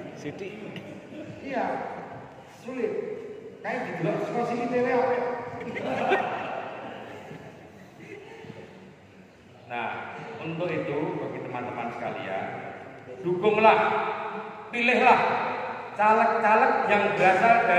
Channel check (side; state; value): both; identical; correlation 1.00